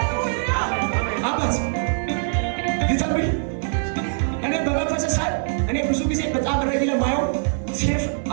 አባት ሊተንብይ እኔ በመንፈስ ሳይ እኔ ብዙ ጊዜ በጣም ረጊ ለማየው ሴፍ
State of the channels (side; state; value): left; silent; digital silence